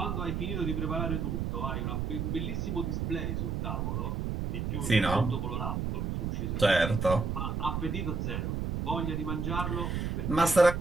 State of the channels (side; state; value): right; noise; rumble, 1 dB below the sound